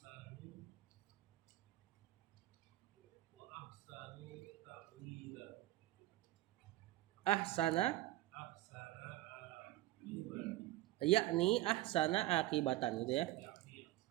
ta'wila Ahsana ahsana yakni ahsana akibatan gitu ya.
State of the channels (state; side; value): quieter; left; 16.2 dB